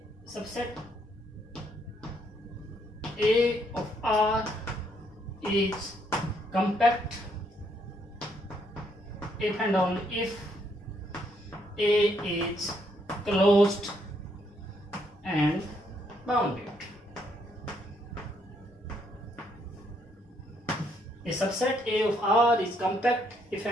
A of R is compact if and only if A is closed and bounded. A subset A of R is compact if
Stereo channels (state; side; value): normal; both; correlation 0.72